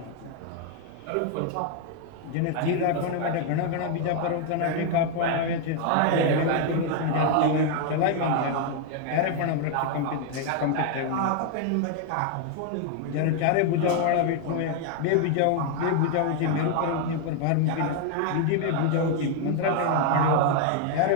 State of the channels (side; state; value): both; different; correlation 0.00